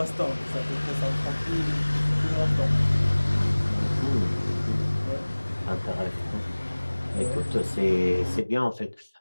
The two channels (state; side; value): inverted; both; correlation -1.00